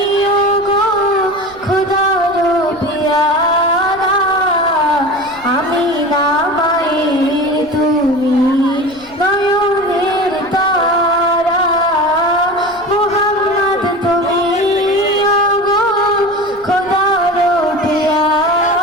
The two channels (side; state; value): left; noise; rumble, 25 dB below the sound